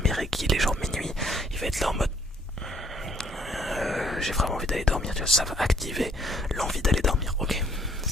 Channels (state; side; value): normal; both; correlation 0.63